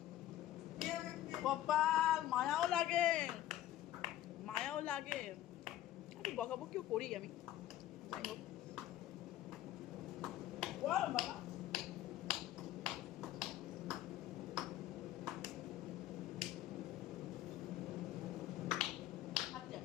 কপাল, মায়াও লাগে, মায়াও লাগে। একটু বকাবকিও করি আমি, যাই হোক। বল বাবা।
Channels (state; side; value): quieter; right; 13.3 dB